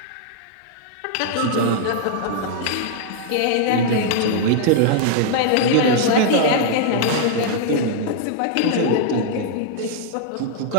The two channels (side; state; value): both; different; correlation -0.01